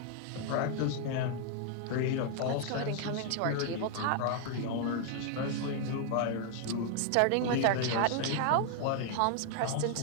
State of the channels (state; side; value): different; both; correlation 0.00